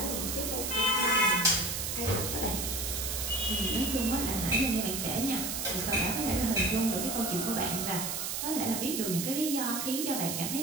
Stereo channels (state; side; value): noise; right; hiss, 2 dB below the sound